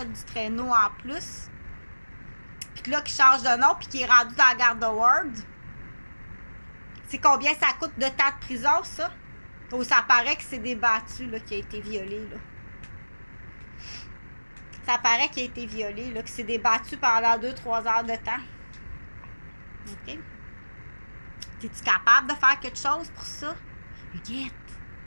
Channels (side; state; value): both; inverted; correlation -1.00